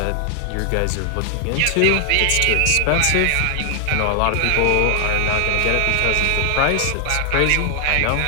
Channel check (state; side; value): different; both; correlation 0.00